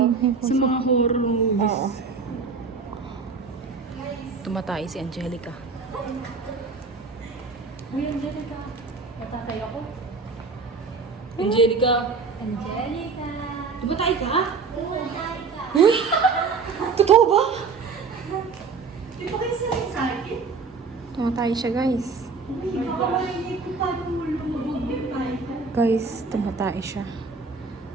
mga- Sa mga horror movies. Oo. Tumatay si Angelica. Uy, Angelica. Natatay ako. Angelica. Angelica. Tumatay ka? Totoo ba? Di ba kayo sanay sa akin? Tumatay siya guys. Uy, kakawalay ko paano mo lumabog yung tayo ko. Guys, tumatay siya.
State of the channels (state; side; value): quieter; left; 4.7 dB